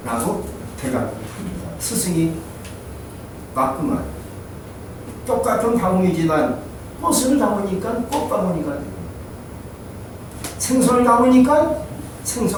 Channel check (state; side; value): identical; both; correlation 1.00